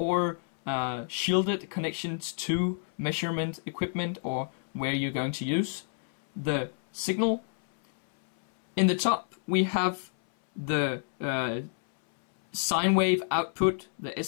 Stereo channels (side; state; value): right; silent; 59 dB below the other